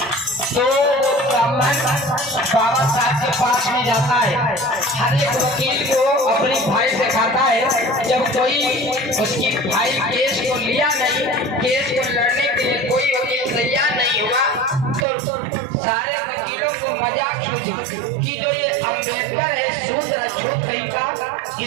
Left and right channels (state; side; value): drops out; left; at 15.1 s